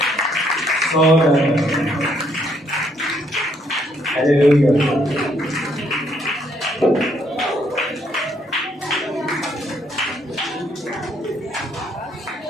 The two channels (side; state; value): both; normal; correlation 0.70